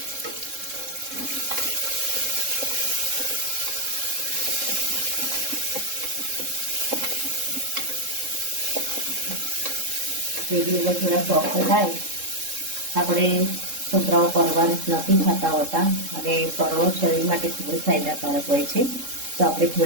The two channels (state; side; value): late; left; 3.7 ms